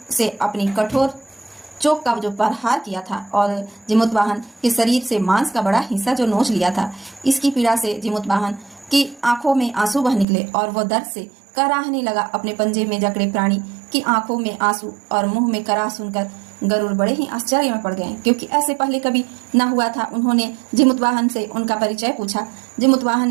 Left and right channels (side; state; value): left; drops out; at 10.2 s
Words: से अपनी कठोर चोक का जो प्रहार किया था और जीवतवाहन के शरीर से मांस का बड़ा हिस्सा जो नोच लिया था, इसकी पीड़ा से जीवतवाहन की आंखों में आंसू बह निकले और वह दर्द से कराहने लगा। अपने पंजे में जकड़े प्राणी की आंखों में आंसू और मुंह में कराह सुनकर गरुड़ बड़े ही आश्चर्य में पड़ गए, क्योंकि ऐसे पहले कभी न हुआ था। उन्होंने जीवतवाहन से उनका परिचय पूछा। जीवतवाहन